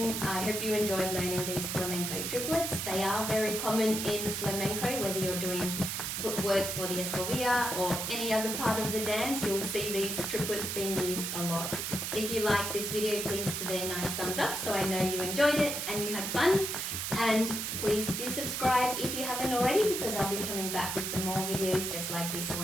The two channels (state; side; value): noise; right; hiss, 3 dB below the sound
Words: I hope you enjoyed learning these flamenco triplets. They are very common in flamenco, whether you're doing footwork for the escobilla or any other part of the dance, you'll see these triplets being used a lot. If you like this video, please give it a nice thumbs up so I know you enjoyed it and you had fun. And please do subscribe if you haven't already, because I'll be coming back with some more videos just like this